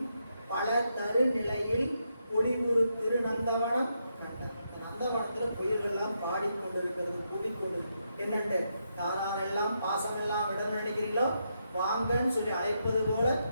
பல தரு நிலையில் பொலிவுறு திரு நந்தவனம் கண்டார். நந்தவனத்துல குயில்கள் எல்லாம் பாடிக்கொண்டிருக்கிறது, கூடிக்கொண்டு என்னண்டு யாரெல்லாம் பாசமெல்லாம் விட நினைக்கிறீங்களோ வாங்கன்னு சொல்லி அழைப்பது போல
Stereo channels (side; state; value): both; inverted; correlation -0.81